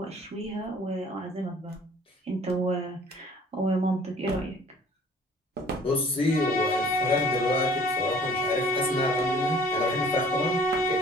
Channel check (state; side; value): normal; both; correlation 0.53